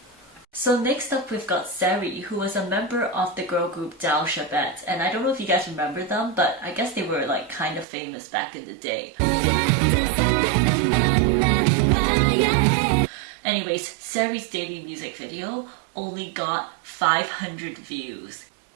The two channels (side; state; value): left; drops out; at 7.9 s